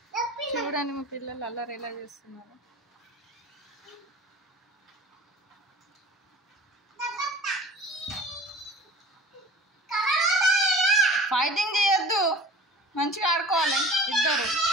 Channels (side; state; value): both; normal; correlation 0.41